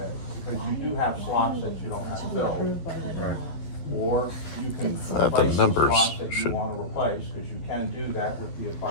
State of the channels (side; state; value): right; late; 11 ms